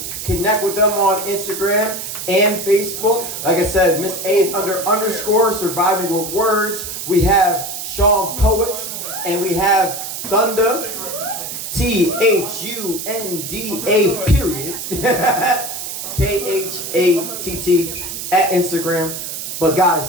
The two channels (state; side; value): noise; right; hiss, 7 dB below the sound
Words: connect with them on Instagram and Facebook. Like I said, Miss A is _ surviving with words. We have Sean Poets and we have Thunda THUNDA KHATT at Instagram. But